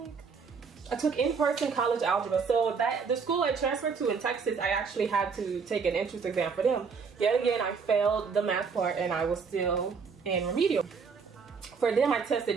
take? I took in-person college algebra. So the school I transferred to in Texas, I actually had to take an entrance exam for them. Yet again, I failed the math part and I was still in remedial. For them, I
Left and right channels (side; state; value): left; quieter; 5.5 dB